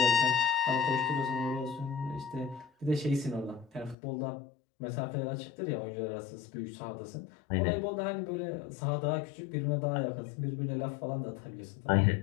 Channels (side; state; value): right; drops out; at 4.0 s